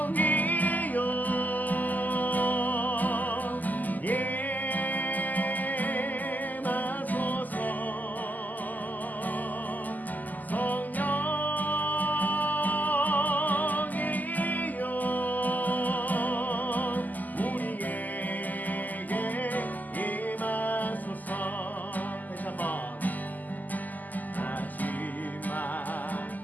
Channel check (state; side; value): late; right; 0.082 ms